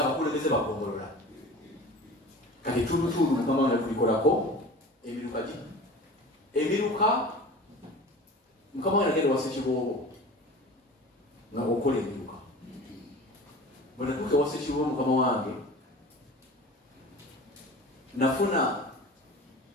baggombolola. Kati ettulutuulu Mukama wange tulikolako emiruka gi emiruka Mukama wange agenda wasa ekiboobo nga okola emiruka. Bwe natuuka wasa ekiboobo Mukama wange nafuna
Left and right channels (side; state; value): both; normal; correlation 0.38